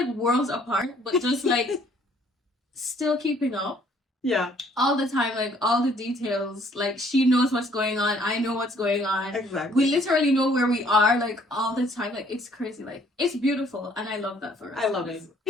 worlds apart, but just like still keeping up. Yeah. All the time, like all the details. Like she knows what's going on. I know what's going on. Exactly. We literally know where we are, like all the time. Like it's crazy. Like it's beautiful, and I love that for us. I love it.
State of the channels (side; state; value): both; normal; correlation 0.61